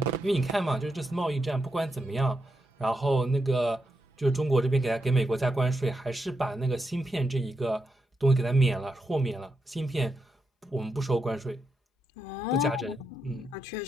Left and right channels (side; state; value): both; normal; correlation 0.84